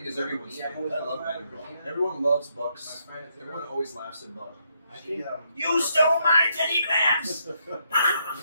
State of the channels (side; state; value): both; inverted; correlation -0.76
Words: is everyone's favorite. I love Banner Brawl. Everyone loves Bucks. Everyone always laughs at Buck. You stole my Teddy Grams!